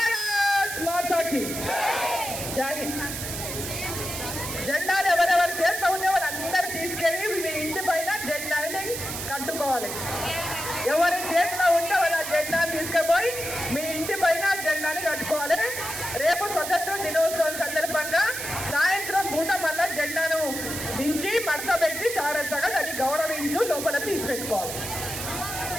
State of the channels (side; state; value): right; noise; hiss, 6 dB below the sound